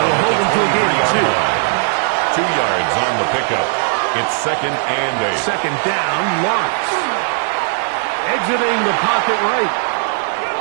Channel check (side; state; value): left; silent; 59 dB below the other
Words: They'll hold him to a gain of 2. 2 yards on the pickup. It's 2nd and 8. Second down, Lawrence. Exiting the pocket right.